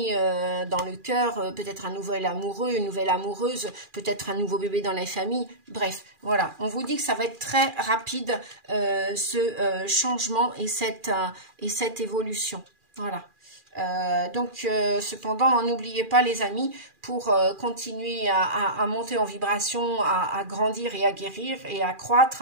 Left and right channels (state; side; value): late; left; 2.4 ms